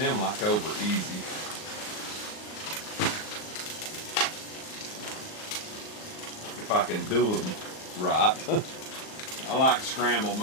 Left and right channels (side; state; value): right; late; 38 ms